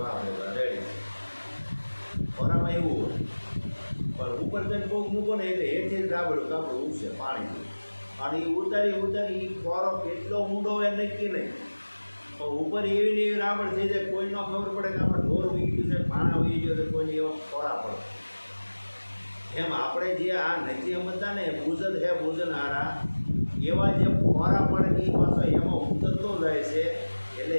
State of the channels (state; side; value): inverted; both; correlation -1.00